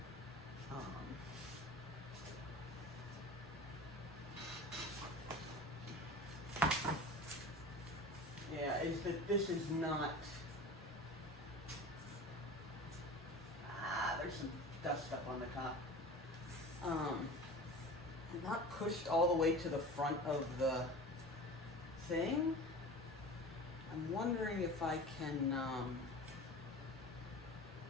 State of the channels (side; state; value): both; normal; correlation 0.36